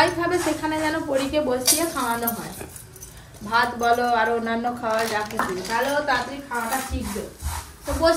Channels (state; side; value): identical; both; correlation 1.00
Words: খাবে সেখানে যেন পরীকে বসিয়ে খাওয়ানো হয়। ভাত বলো আর অন্যান্য খাওয়া যা কিছু, তাহলে ও তাড়াতাড়ি খাওয়াটা শিখবে। তো